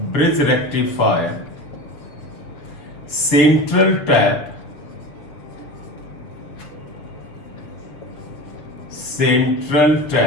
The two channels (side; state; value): right; late; 6.8 ms